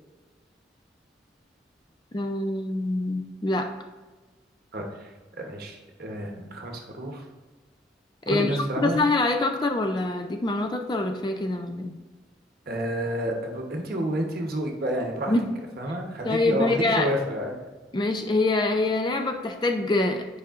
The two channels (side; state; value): both; normal; correlation 0.59